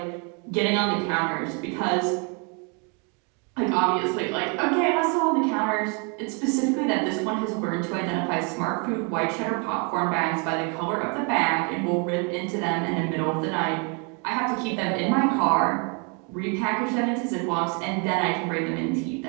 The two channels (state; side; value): quieter; left; 35.3 dB